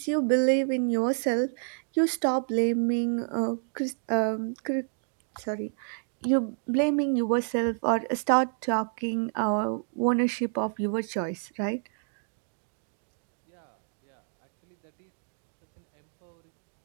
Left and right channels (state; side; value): silent; left; digital silence